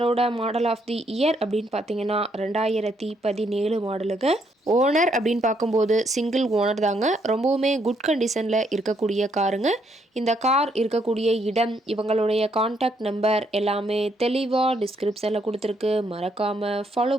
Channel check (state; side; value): normal; both; correlation 0.73